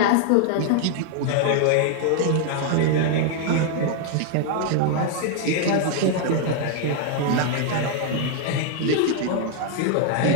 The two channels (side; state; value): both; different; correlation 0.00